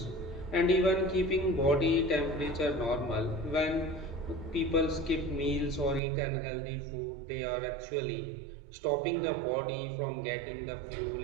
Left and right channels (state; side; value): drops out; left; at 6.0 s